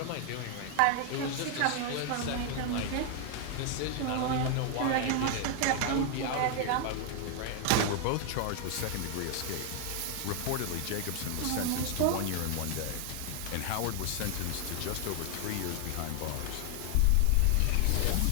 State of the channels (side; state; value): both; different; correlation 0.00